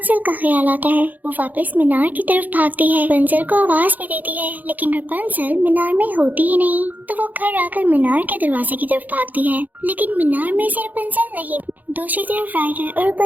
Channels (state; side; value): late; left; 0.082 ms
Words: का ख्याल आता है। वो वापस मीनार की तरफ भागती है, रपुंज़ल को आवाज भी देती है, लेकिन रपुंज़ल मीनार में होती ही नहीं। तो वो घर आकर मीनार के दरवाजे की तरफ भागती है, लेकिन मीनार में से रपुंज़ल नहीं। दूसरी तरफ राइडर और